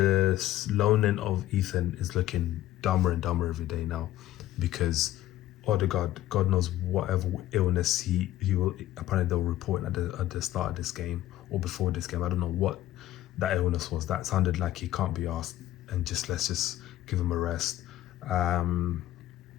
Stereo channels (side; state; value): right; quieter; 14.2 dB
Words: loaning of Ethan is looking dumber and dumber every day now, because Odegaard, God knows whatever illness he will, apparently they'll report at the start of this game or before this game. I don't know what that illness was. That sounded like he can't be asked, and let's just give him a rest.